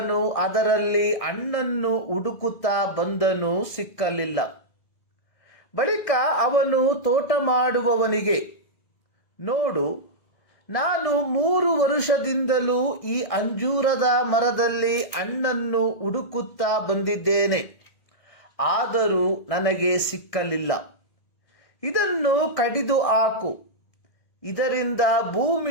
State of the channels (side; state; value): right; late; 1.6 ms